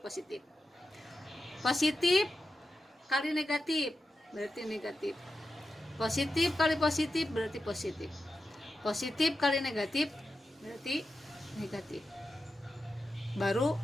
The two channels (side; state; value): both; normal; correlation 0.90